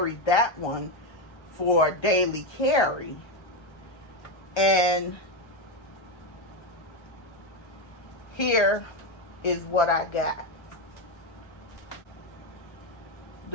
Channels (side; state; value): right; late; 1.3 ms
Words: that one for daily carry. And here is what I got.